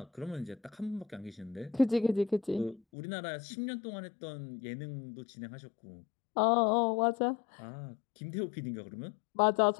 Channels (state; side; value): drops out; right; at 2.8 s